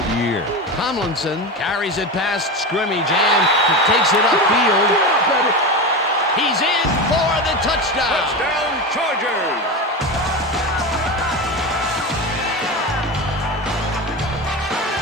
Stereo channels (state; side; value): normal; both; correlation 0.22